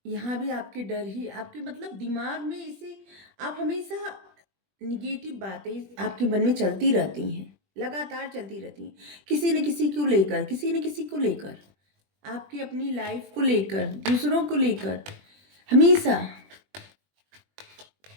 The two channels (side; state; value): left; late; 20 ms